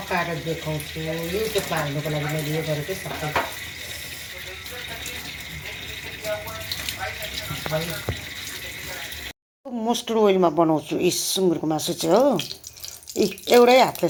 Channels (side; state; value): both; identical; correlation 1.00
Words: देखाउँछु। युट्युबमा हाल्नुको लागि मैले यो गरेकै सबै मस्टर्ड ओइलमा बनाउँछु यी सुँगुरको मासु चाहिँ हो। एउटै हातले